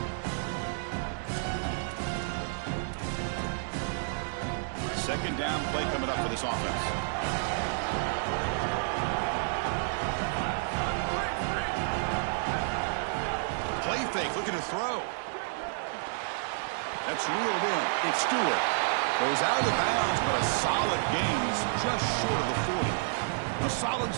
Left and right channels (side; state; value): left; silent; digital silence